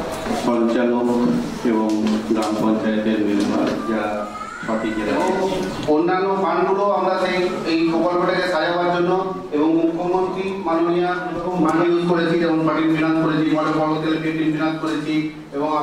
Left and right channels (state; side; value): identical; both; correlation 1.00